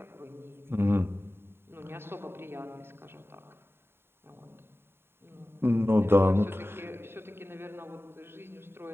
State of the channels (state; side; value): late; left; 0.11 ms